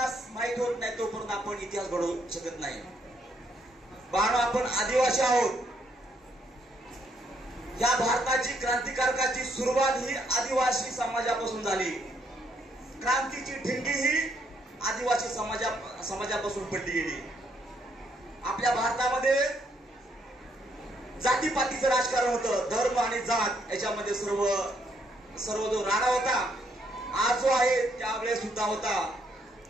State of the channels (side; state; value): both; normal; correlation 0.73